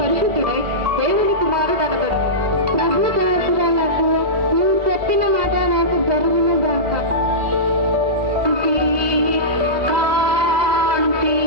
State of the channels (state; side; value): late; left; 2.0 ms